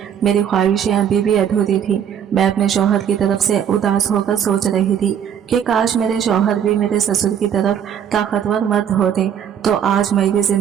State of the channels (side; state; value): left; quieter; 8.7 dB